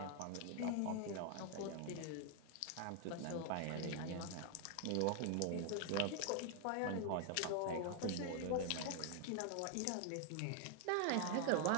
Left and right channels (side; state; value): both; different; correlation 0.00